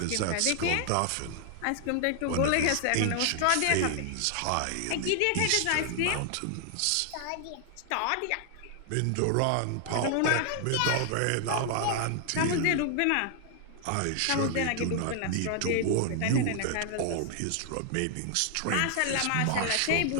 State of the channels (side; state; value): both; different; correlation 0.00